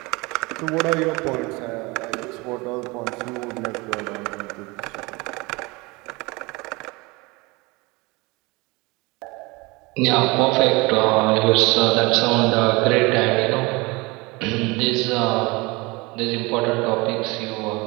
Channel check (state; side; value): quieter; left; 24.7 dB